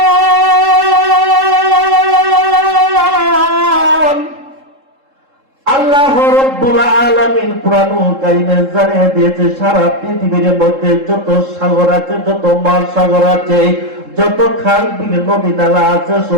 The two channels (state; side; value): late; left; 3.7 ms